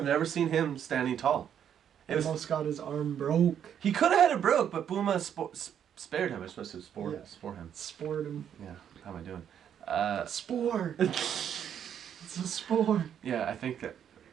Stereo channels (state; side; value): quieter; left; 9.0 dB